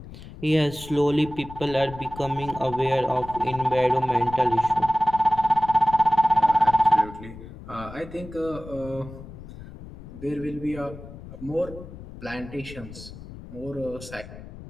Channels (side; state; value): left; noise; rumble, 15 dB below the sound